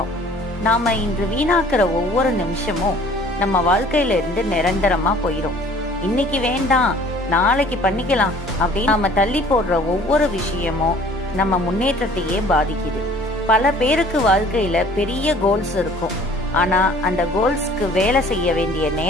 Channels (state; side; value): normal; both; correlation 0.53